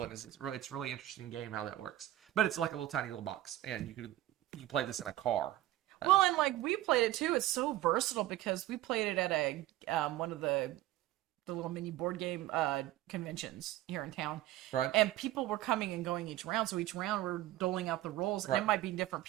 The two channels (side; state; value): left; quieter; 14.9 dB